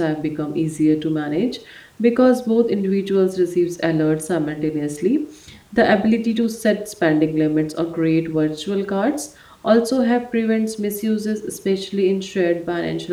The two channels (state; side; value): identical; both; correlation 1.00